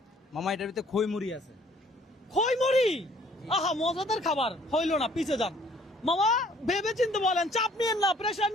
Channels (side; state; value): both; normal; correlation 0.58